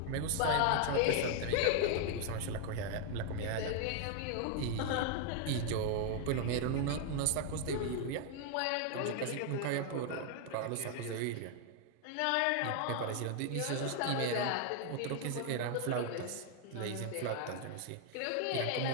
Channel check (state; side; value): different; both; correlation 0.00